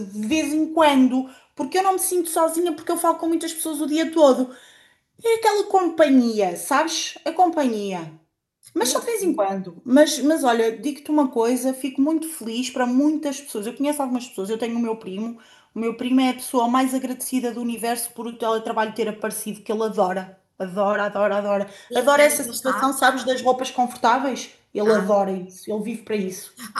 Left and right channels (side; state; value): both; identical; correlation 1.00